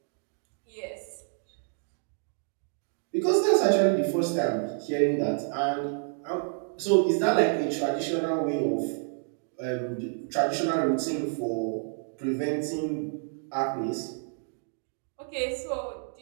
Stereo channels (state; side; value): silent; left; 59 dB below the other